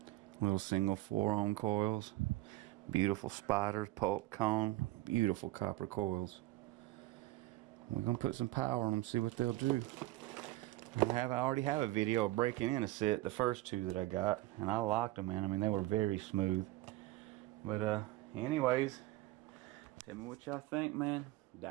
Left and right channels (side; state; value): left; quieter; 17.7 dB